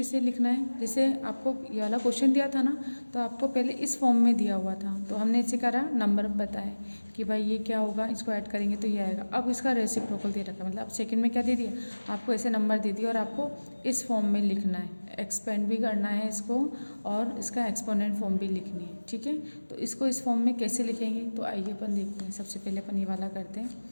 लिखना है, जैसे आपको ये वाला क्वेश्चन दिया था ना, तो आपको पहले इस फॉर्म में दिया हुआ था, तो हमने इसे करा नंबर बताए कि भाई ये क्या होगा, इसको ऐड करेंगे तो ये आएगा। अब इसका रेसिप्रोकल दे रखा है, मतलब सेकंड में क्या दे दिया, आपको ऐसे नंबर दे दिया और आपको इस फॉर्म में लिखना है, एक्सपेंड भी करना है इसको और इसका एक्सपोनेंट फॉर्म भी लिखनी है, ठीक है। तो इसको इस फॉर्म में कैसे लिखेंगे, तो आइए अपन देखते हैं। सबसे पहले अपन ये वाला करते हैं।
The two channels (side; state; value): both; inverted; correlation -1.00